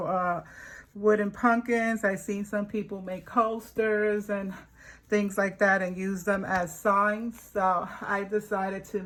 wooden pumpkins. I've seen some people make coasters and things like that and use them as signs. So I decided to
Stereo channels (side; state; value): both; identical; correlation 1.00